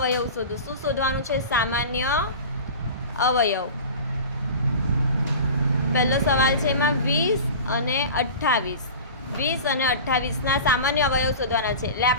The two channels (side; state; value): both; inverted; correlation -0.34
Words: શોધો. શું શોધવાનું છે? સામાન્ય અવયવ. પહેલો સવાલ છે એમાં 20 અને 28. 20 અને 28ના સામાન્ય અવયવ શોધવાના છે. એટલે